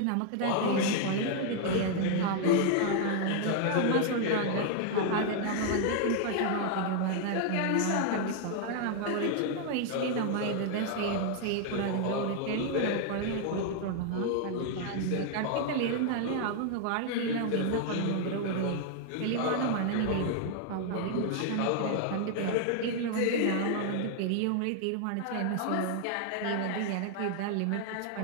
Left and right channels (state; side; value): different; both; correlation 0.00